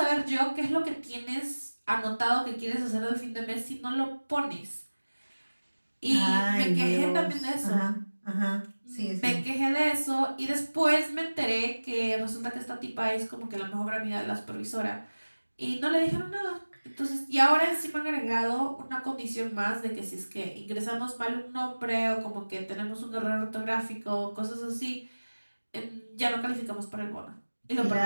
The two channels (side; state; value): both; inverted; correlation -1.00